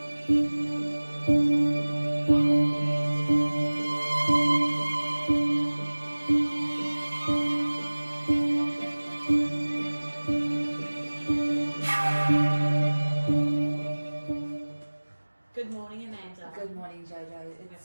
Good morning, Amanda. Good morning, Jojo.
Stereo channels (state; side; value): inverted; both; correlation -1.00